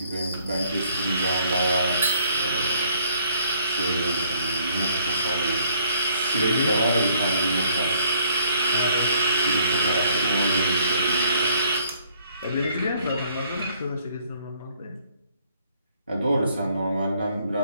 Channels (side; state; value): both; inverted; correlation -0.65